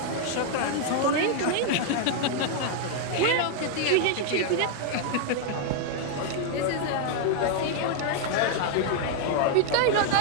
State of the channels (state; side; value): different; both; correlation 0.00